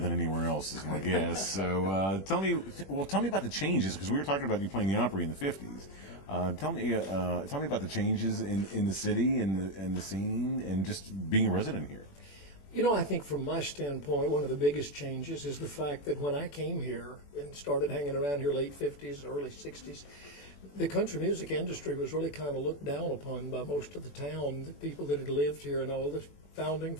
anywhere else, is my guess. So tell me about the changes, because we were talking about you playing the Opry in the '50s. Tell me about the changes in the city and the scene, and just being a resident here. You know, I think from my standpoint, one of the biggest changes is the fact that when I came here and started hanging around here late 50s, early 60s, the country music industry was really kind of looked down upon by most of the town, the people that had lived here and all the founding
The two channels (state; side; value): late; right; 21 ms